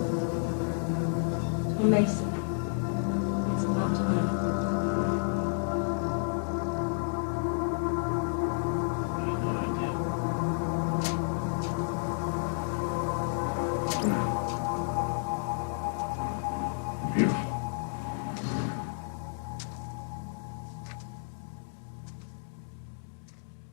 Tom Mason. It's about time. Beautiful.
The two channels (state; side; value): silent; right; digital silence